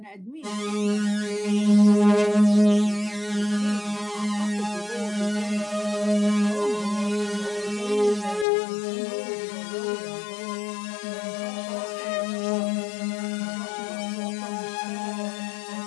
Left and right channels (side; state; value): right; drops out; at 8.5 s